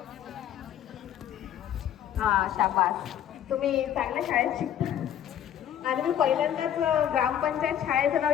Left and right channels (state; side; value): quieter; right; 10.4 dB